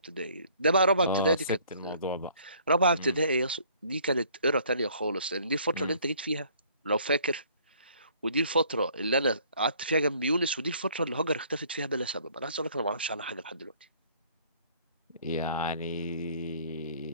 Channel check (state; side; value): inverted; both; correlation -0.59